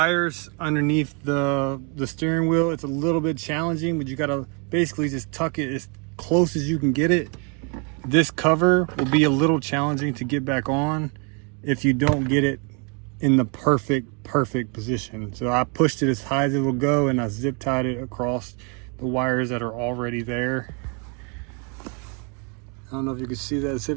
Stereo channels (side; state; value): left; quieter; 35.4 dB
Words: underneath the steering wheel, it's a little bit challenging, but you gotta basically just tuck it as close as you can get it. This cover will be a little challenging to get back on if you don't get it in the perfect position. So I pushed it as high as it will go, and I zip tied it across the wires that are already there. I don't know if you can see that